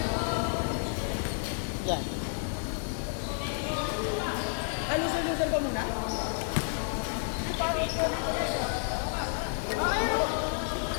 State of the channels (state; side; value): silent; right; 57 dB below the other